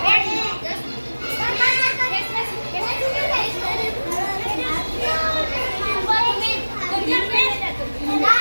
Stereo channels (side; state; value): both; inverted; correlation -1.00